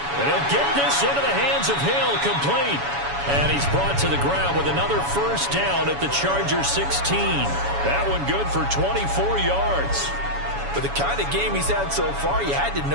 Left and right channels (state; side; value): late; left; 7.1 ms